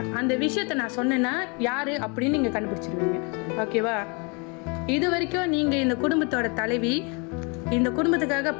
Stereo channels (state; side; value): quieter; right; 32.4 dB